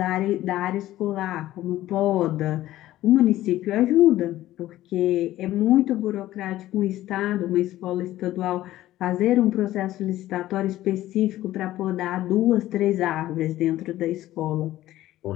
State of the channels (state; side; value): quieter; right; 14.8 dB